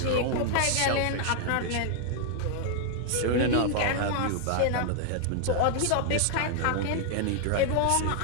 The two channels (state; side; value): different; both; correlation 0.00